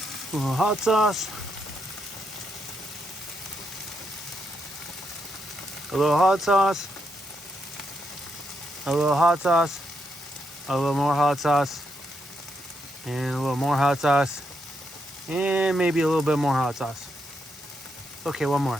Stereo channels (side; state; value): both; normal; correlation 0.80